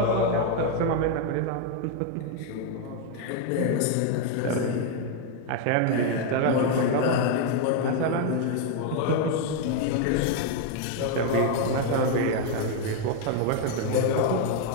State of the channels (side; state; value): both; different; correlation 0.01